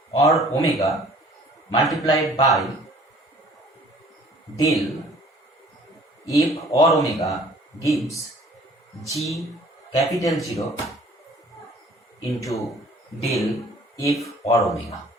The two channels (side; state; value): both; normal; correlation 0.53